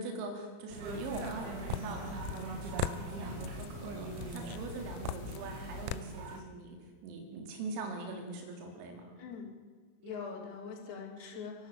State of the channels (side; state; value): left; late; 34 ms